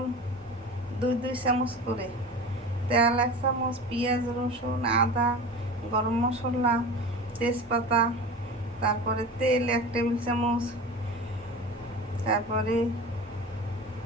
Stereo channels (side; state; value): both; normal; correlation 0.33